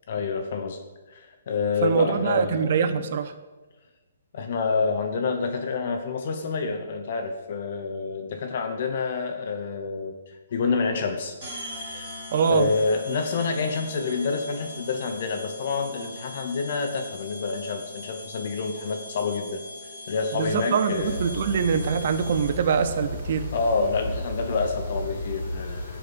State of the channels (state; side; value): inverted; both; correlation -0.63